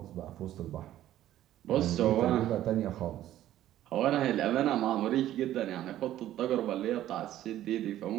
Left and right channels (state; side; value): quieter; left; 13.0 dB